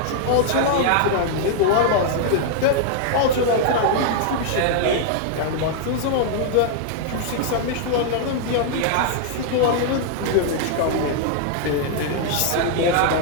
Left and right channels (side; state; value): both; different; correlation -0.01